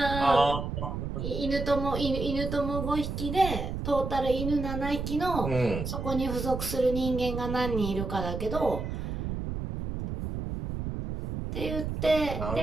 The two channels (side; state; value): right; noise; rumble, 4 dB below the sound